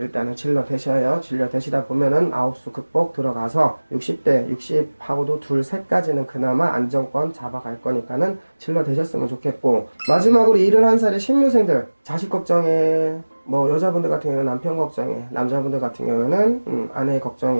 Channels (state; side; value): inverted; both; correlation -1.00